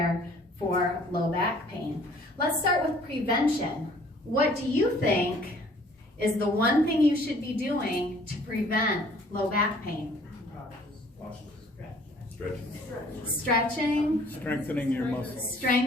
for low back pain. Let's start with prevention. What do you think is the one thing you should be doing to prevent low back pain? Stretching. Strengthening your muscles.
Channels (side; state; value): both; normal; correlation 0.56